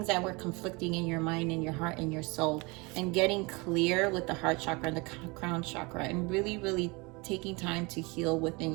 that were conflicting in your mind, in your heart, and your soul, and getting clear with the heart chakra and the crown chakra, and really, really taking time to heal within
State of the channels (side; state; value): left; quieter; 26.8 dB